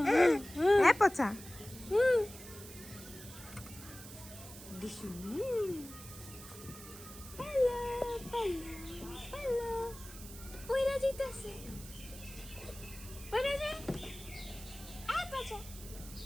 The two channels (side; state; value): right; noise; hiss, 15 dB below the sound